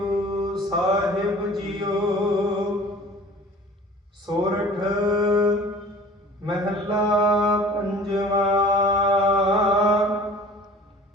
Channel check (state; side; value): normal; both; correlation 0.46